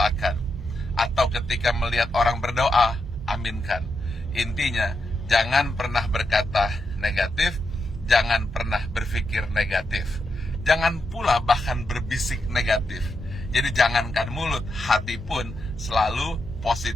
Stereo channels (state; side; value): normal; both; correlation 0.85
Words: atau ketika melihat orang berdoa, aminkan. Intinya, jangan pernah berkata negatif, jangan pernah berpikir negatif, jangan pula bahkan berbisik negatif. Jadi jangankan mulut, hati pun selalu